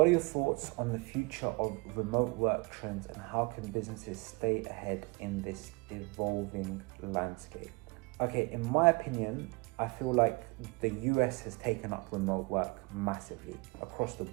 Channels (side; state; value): left; quieter; 28.1 dB